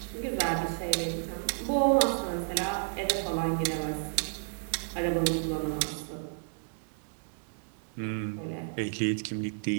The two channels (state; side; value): silent; left; digital silence